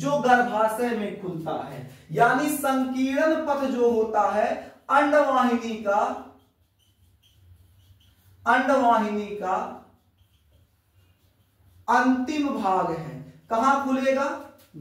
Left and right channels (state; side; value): identical; both; correlation 1.00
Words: गर्भाशय में खुलता है। यानी संकीर्ण पथ जो होता है अंडवाहिनी का अंतिम भाग है। कहां खुलेगा,